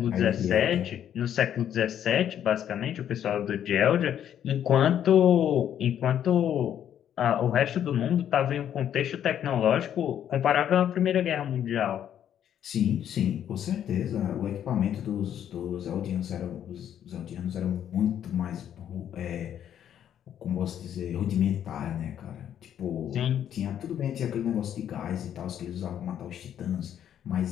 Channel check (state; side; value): quieter; right; 10.0 dB